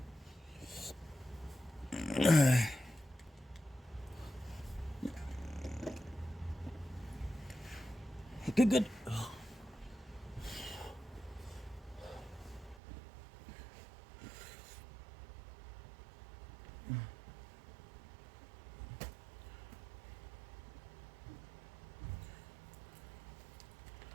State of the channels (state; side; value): drops out; left; at 12.8 s